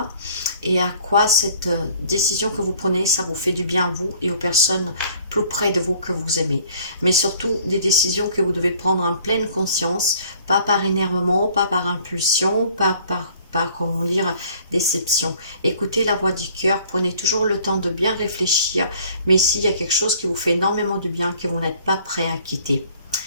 et à quoi cette décision que vous prenez, ça vous fait du bien à vous et aux personnes plus près de vous que vous aimez. Mais surtout, des décisions que vous devez prendre en pleine conscience, pas par énervement, pas par impulsion, pas comment dire, déception. Écoutez la voix du cœur, prenez toujours le temps de bien réfléchir, mais s'il y a quelque chose qui vous fait énormément de bien, que vous n'êtes pas prêt à quitter.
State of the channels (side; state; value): both; inverted; correlation -0.55